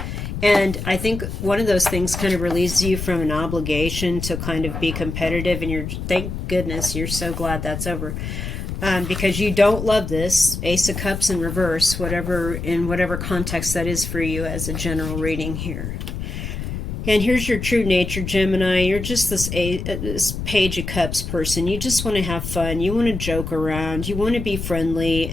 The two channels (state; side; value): noise; left; rumble, 5 dB below the sound